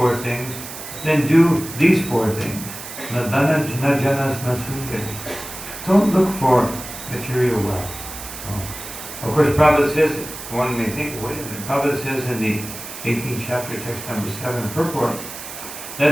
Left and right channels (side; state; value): right; noise; hiss, 11 dB below the sound